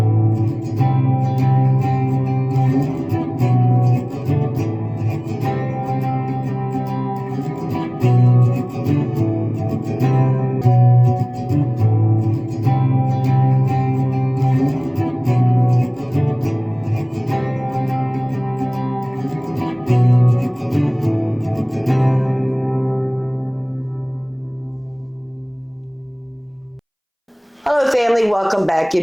Hello family, welcome back.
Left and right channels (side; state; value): both; identical; correlation 1.00